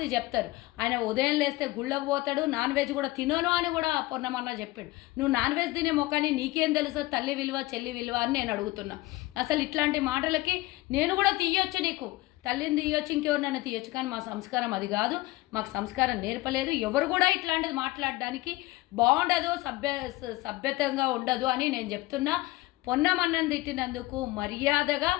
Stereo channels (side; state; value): right; quieter; 19.7 dB